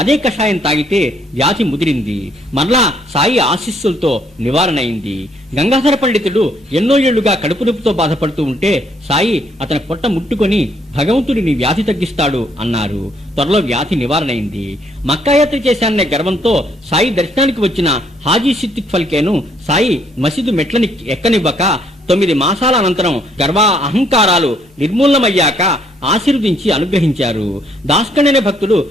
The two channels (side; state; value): both; normal; correlation 0.68